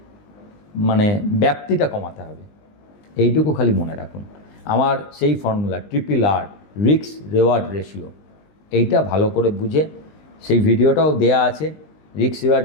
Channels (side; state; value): right; late; 19 ms